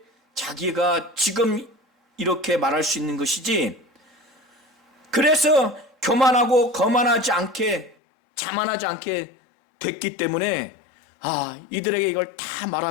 자기가 지금 이렇게 말할 수 있는 것이지, 그래서 교만하고 거만하지 않게, 자만하지 않게 됐기 때문에 이들에게 이걸 다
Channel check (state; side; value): drops out; right; at 8.0 s